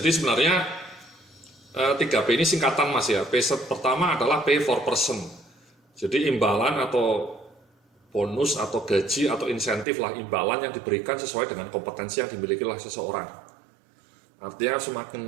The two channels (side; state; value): left; drops out; at 9.9 s